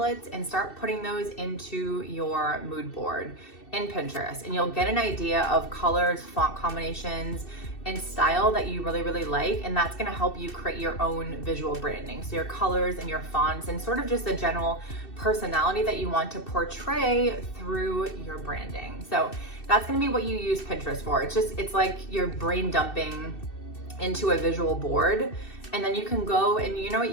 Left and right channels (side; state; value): right; late; 2.6 ms